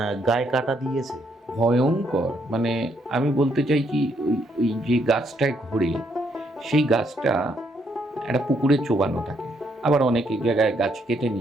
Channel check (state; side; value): normal; both; correlation 0.73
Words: গায়ে কাটা দিয়েছে ভয়ঙ্কর। মানে আমি বলতে চাই কি, ওই যে গাছটায় ঘোরে সেই গাছটা একটা পুকুরে চোবানো থাকে, আবার অনেক জায়গায় গাছ কেটে